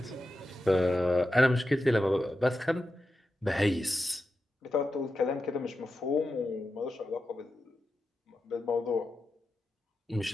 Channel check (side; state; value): both; normal; correlation 0.90